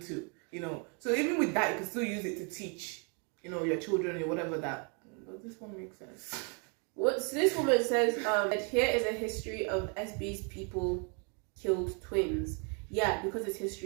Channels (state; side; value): quieter; left; 36.9 dB